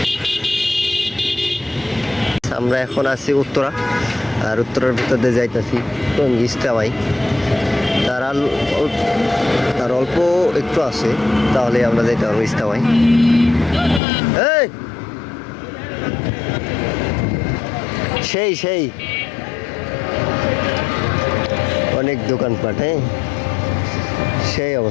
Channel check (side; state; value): right; drops out; at 14.0 s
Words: আমরা এখন আছি উত্তরা, আর উত্তরার ভিতর দিয়ে যাইতেছি ইস্তামাই। তার অল্প একটু আছে, তাহলে আমরা যাইতে পারবো ইস্তামাই। এই সেই অনেক দোকানপাট, হ্যাঁ সেই